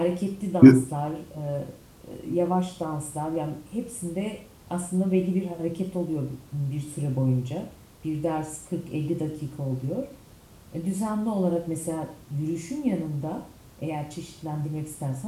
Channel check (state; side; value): identical; both; correlation 1.00